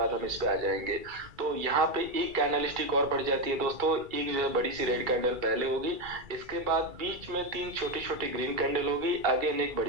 हम इस पे आ जाएंगे। तो यहाँ पे एक कैंडलस्टिक और बढ़ जाती है दोस्तों, एक जो है बड़ी सी रेड कैंडल पहले होगी, इसके बाद बीच में तीन छोटी छोटी ग्रीन कैंडल होगी, आगे एक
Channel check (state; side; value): late; left; 2.3 ms